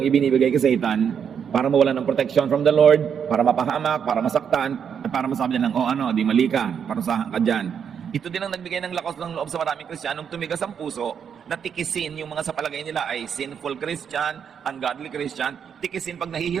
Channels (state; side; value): quieter; left; 7.6 dB